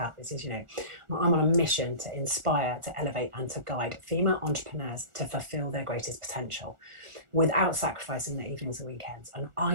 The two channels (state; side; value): late; left; 1.4 ms